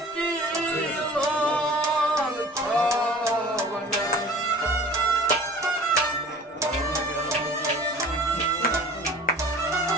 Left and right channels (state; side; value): normal; both; correlation 0.44